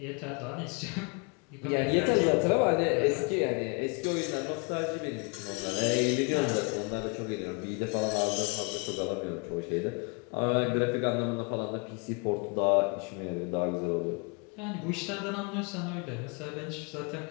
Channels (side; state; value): right; quieter; 33.5 dB